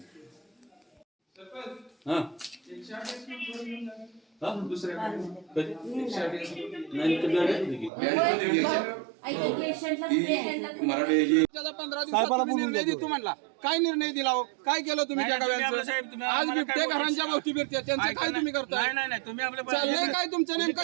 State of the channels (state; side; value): drops out; left; at 7.9 s